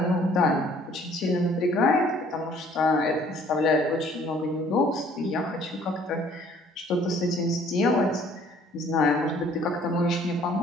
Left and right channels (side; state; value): both; normal; correlation 0.58